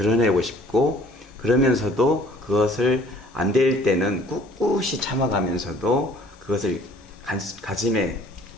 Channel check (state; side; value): normal; both; correlation 0.55